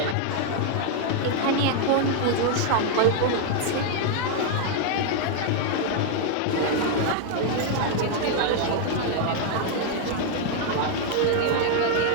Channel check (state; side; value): different; both; correlation 0.00